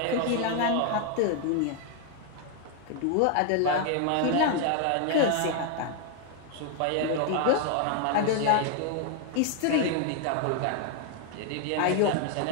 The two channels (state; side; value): different; both; correlation 0.00